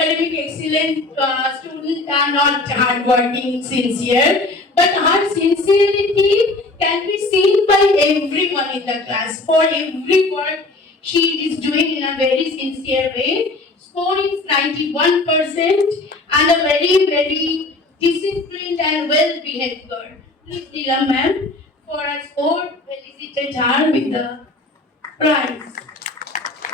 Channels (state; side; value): quieter; right; 3.1 dB